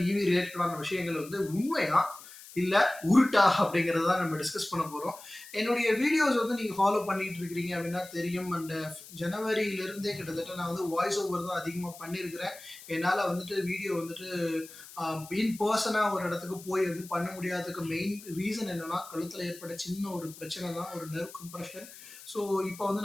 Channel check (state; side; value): noise; left; hiss, 17 dB below the sound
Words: இவி ரிலேட்டடான விஷயங்கள் வந்து உண்மையா இல்லை உருட்டா அப்படிங்கிறத தான் நம்ம டிஸ்கஸ் பண்ண போகிறோம். என்னுடைய வீடியோஸ் வந்து நீங்கள் ஃபாலோ பண்ணிட்டு இருக்கிறீங்க அப்படின்னா தெரியும். அண்ட் ஜனவரியிலிருந்தே கிட்டத்தட்ட நான் வந்து வாய்ஸ் ஓவர் தான் அதிகமாக பண்ணியிருக்கிறேன். என்னால் வந்துட்டு வீடியோ வந்துட்டு இன் பர்சனாக ஒரு இடத்துக்கு போய் வந்து பண்ண முடியாததுக்கு மெயின் ரீசன் என்னன்னா, கழுத்தில் ஏற்பட்ட சின்ன ஒரு பிரச்சனை தான், ஒரு நெர்வ் கம்ப்ரெஷன். ஸோ இப்போ வந்து